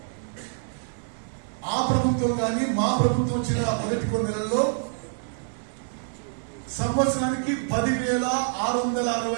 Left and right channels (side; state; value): left; silent; 61 dB below the other